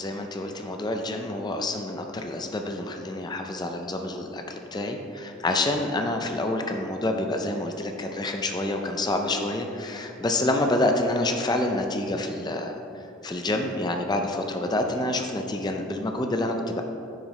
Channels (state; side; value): normal; both; correlation 0.46